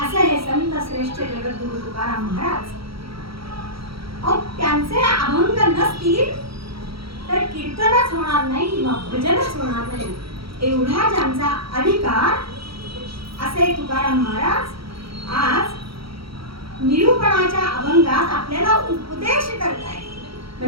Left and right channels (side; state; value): left; late; 0.75 ms